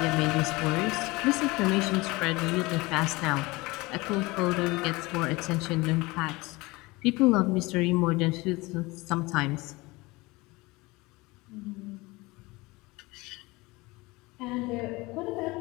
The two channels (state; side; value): quieter; right; 22.8 dB